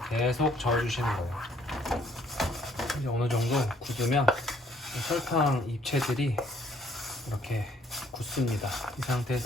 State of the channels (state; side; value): normal; both; correlation 0.63